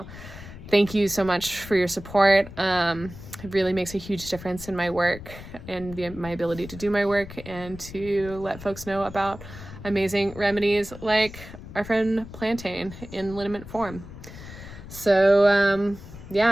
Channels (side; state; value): left; noise; rumble, 14 dB below the sound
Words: thank you so much for your support. It really makes a huge difference in my work and my ability to do my work and to let folks know about amazing remedies like our friend Plantain in liniment form. So